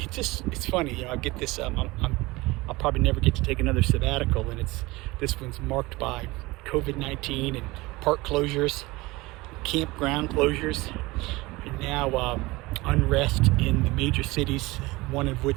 funny, I get this. I'll probably never get to take another sabbatical, and this one's marked by COVID-19 and park closures, campground closures, and now unrest in the major cities, one of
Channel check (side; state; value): left; quieter; 21.5 dB